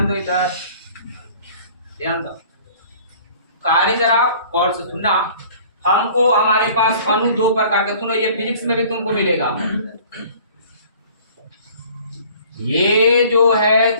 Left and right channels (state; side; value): inverted; both; correlation -0.50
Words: दो, इधर ध्यान दो, कार्य जरा गौर से सुनना। हमको हमारे पास अणु दो प्रकार के, सुनो ये फिजिक्स में भी तुमको मिलेगा, ये जो है